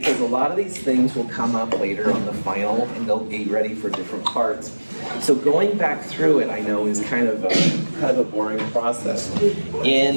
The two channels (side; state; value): both; inverted; correlation -1.00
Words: a lot of these things will come up later on the final and they'll be ready for different parts. So going back through it, I know, is kind of a boring process.